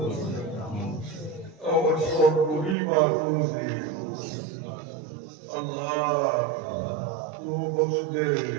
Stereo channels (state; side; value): drops out; left; at 2.8 s